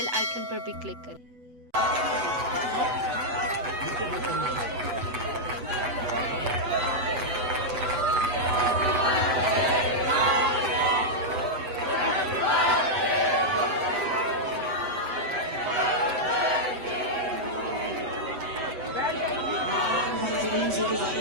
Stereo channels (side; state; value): left; late; 8.0 ms